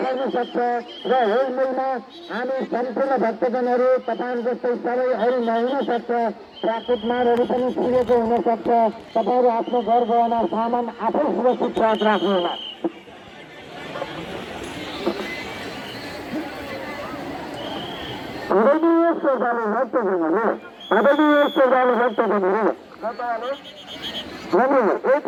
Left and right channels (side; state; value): both; identical; correlation 1.00